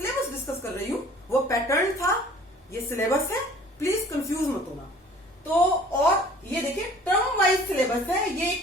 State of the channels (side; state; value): both; normal; correlation 0.50